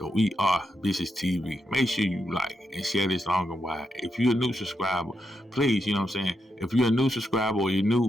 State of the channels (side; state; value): both; normal; correlation 0.83